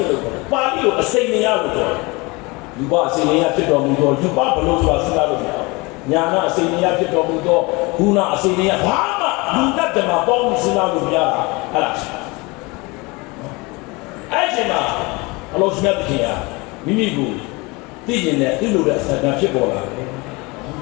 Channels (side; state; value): right; quieter; 25.5 dB